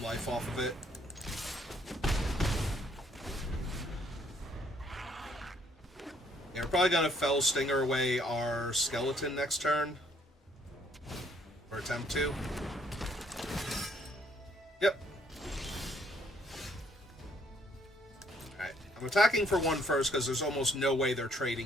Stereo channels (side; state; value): both; normal; correlation 0.67